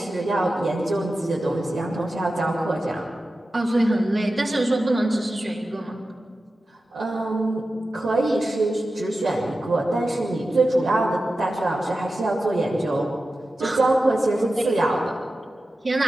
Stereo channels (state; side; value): normal; both; correlation 0.93